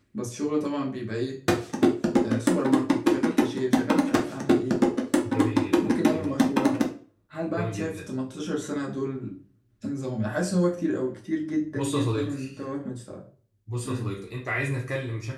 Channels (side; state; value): both; identical; correlation 1.00